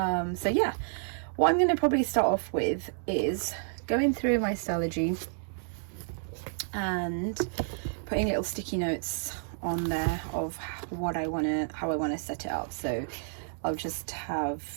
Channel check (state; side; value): silent; left; digital silence